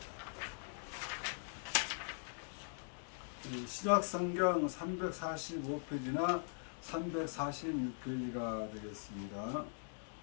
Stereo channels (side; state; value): right; silent; digital silence